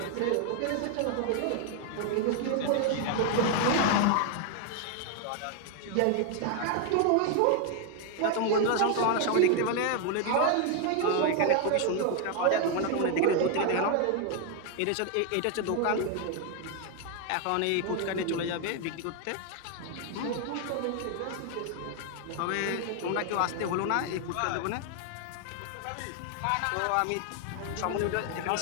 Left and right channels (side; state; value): both; different; correlation 0.00